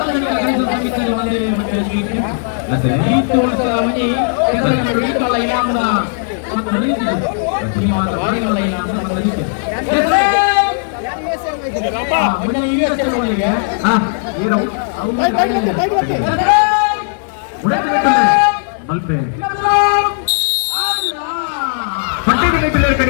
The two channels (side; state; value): right; silent; digital silence